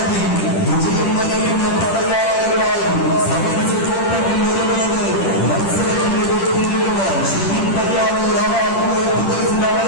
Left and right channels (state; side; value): late; right; 10 ms